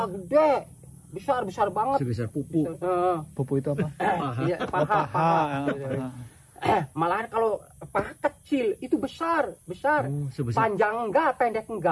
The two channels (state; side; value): identical; both; correlation 1.00